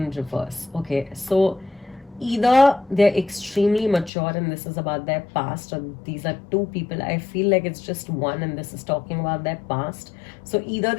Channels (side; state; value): right; drops out; at 4.1 s